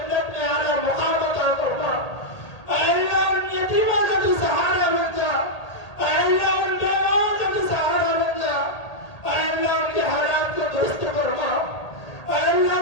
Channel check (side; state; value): right; late; 1.8 ms